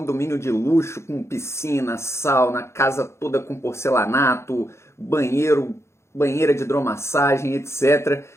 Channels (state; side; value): late; right; 0.13 ms